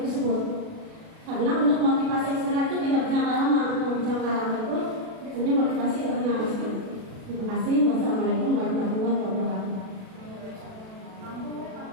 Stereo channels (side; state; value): left; late; 36 ms